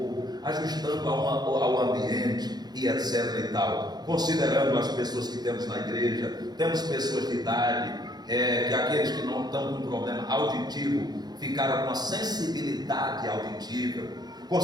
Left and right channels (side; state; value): left; late; 0.20 ms